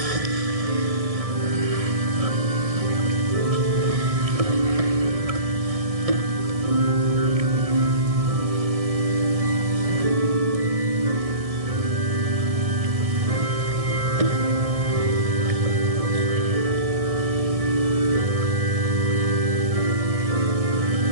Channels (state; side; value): late; left; 1.6 ms